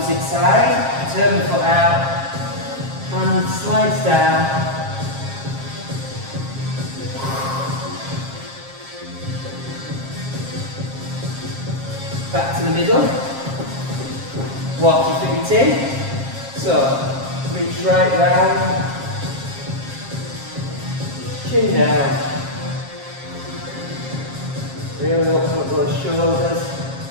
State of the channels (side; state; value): left; late; 7.5 ms